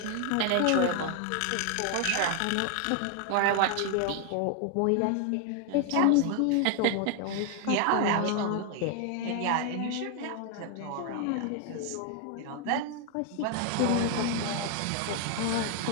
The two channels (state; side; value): different; both; correlation 0.01